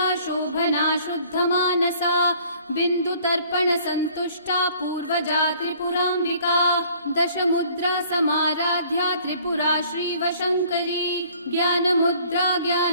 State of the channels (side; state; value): both; inverted; correlation -0.55